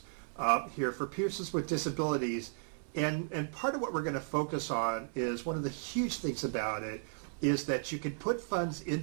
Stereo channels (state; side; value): silent; left; 55 dB below the other